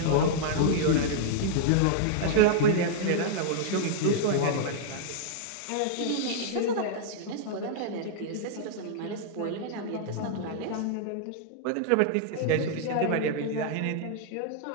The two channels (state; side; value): different; both; correlation -0.01